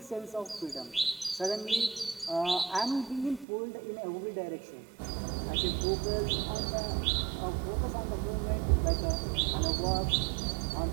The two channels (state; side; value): drops out; left; at 3.5 s